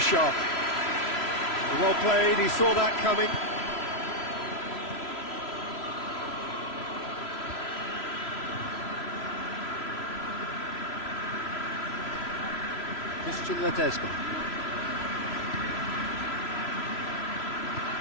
Well played, he saw that coming. Ledesma.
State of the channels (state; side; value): late; right; 3.0 ms